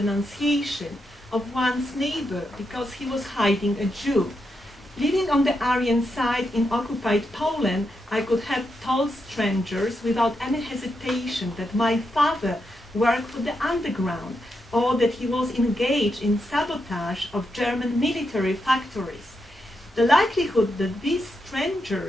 of one's neighbor because he was hiding a Jew. Living on the Aryan side in occupied Poland, I could have told strangers without any hesitation that my father worked for the underground, or that he was engaged in sabotage of German military factories. The likelihood that these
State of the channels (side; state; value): both; normal; correlation 0.84